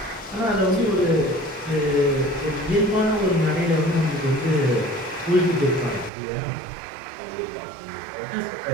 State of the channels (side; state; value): left; drops out; at 6.1 s